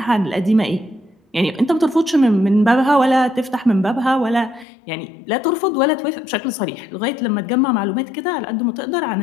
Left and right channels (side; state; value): right; drops out; at 4.7 s